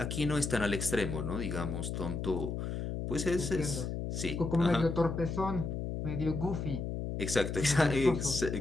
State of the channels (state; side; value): noise; left; hum, 3 dB below the sound